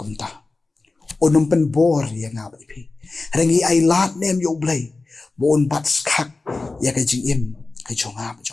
Unum pen bor yang nga wa depi. Rangi ay lat nem yo Blei. Wa un bat skak ya ka jing im ka jong nga ba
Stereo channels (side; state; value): right; quieter; 3.5 dB